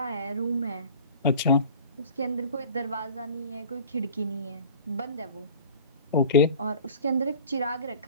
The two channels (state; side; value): inverted; both; correlation -0.43